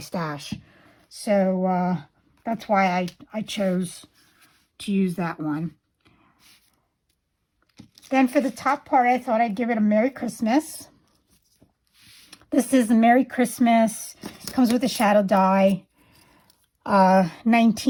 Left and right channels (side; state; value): both; identical; correlation 1.00